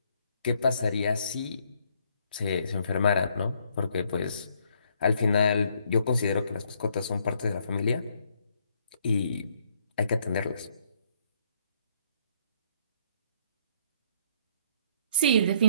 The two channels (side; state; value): both; inverted; correlation -0.68